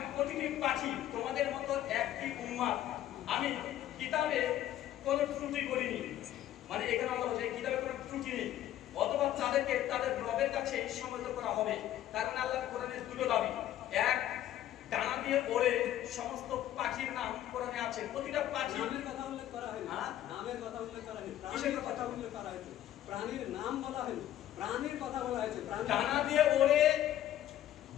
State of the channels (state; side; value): quieter; right; 12.5 dB